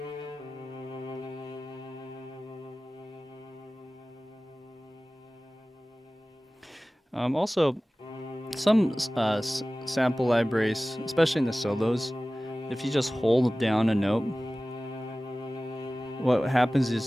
Also, some sample libraries, especially in the solos, if you just hold down a note, what happens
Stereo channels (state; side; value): normal; both; correlation 0.97